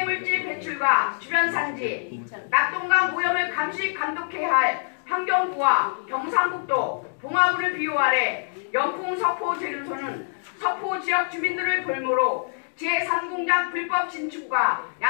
배출과 주변 산지, 낙동강 오염을 감시 감독해야 할 환경부와 경상북도, 봉화군을 비호 아래 영풍 석포 재련소는 석포 지역 주민들을 볼모로 제3공장 불법 진축과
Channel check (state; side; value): silent; right; digital silence